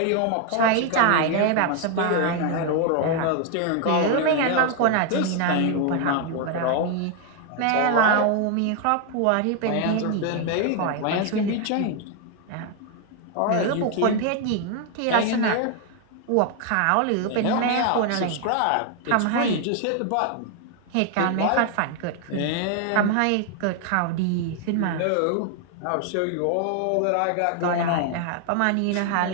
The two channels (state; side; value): different; both; correlation 0.00